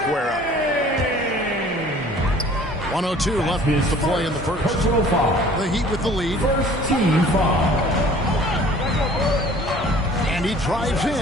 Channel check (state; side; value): normal; both; correlation 0.50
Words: up. 1:02 left to play in the first. The Heat with the lead. First team foul. And he drives